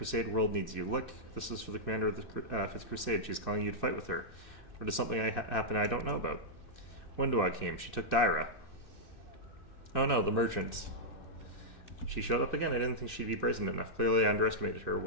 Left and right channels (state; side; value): late; right; 2.6 ms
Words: world needs you. Look, this is for the commander of the 5th Crusade. She's calling you to fight with her. Or does something happen I don't know about? Wendua came. She took Daira. Oh no, the merchant. She showed up again. I didn't think she'd be brazen enough. Clearly I underestimated her.